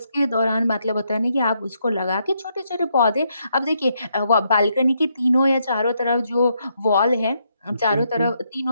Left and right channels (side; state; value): both; inverted; correlation -0.77